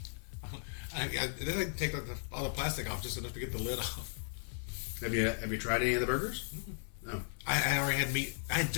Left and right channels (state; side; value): silent; right; 54 dB below the other